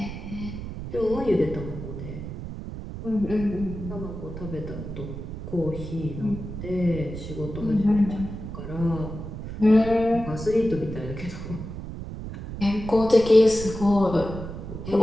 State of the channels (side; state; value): right; noise; rumble, 8 dB below the sound